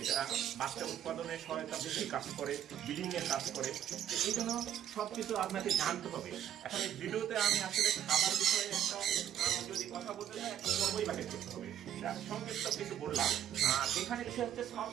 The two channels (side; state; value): left; quieter; 10.5 dB